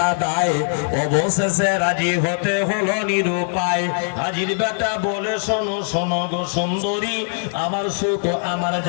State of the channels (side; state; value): right; silent; digital silence